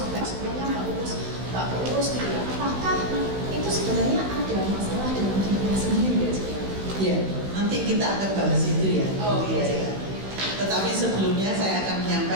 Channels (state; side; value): late; left; 16 ms